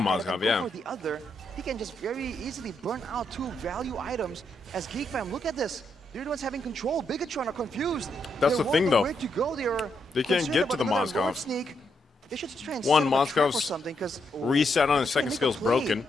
Mozgov, yeah. The other, he can just very easily burn out two value items. As Geek Fam, look at this. They're the ones having control. Bigatron are confused. That's They the thing, won't know though. where to go. They can't concerned get to about the another road Mozgov. sneak. They should just try and One, set up a trap or Mozgov's something, 'cause reset on his second make a skill's play, broken.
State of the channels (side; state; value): both; normal; correlation 0.79